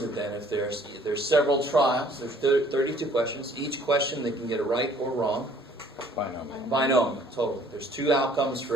it then? If there's several trials, there's 32 questions. Each question they can get it right or wrong. Binomial. Binomial, totally. There's 2 outcomes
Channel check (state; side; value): normal; both; correlation 0.57